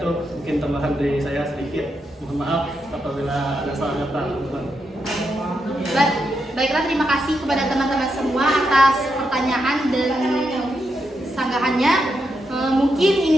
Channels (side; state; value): both; normal; correlation 0.83